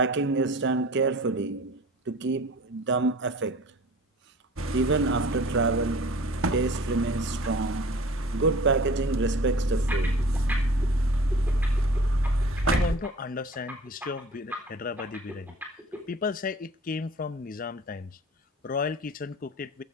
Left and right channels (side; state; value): both; normal; correlation 0.43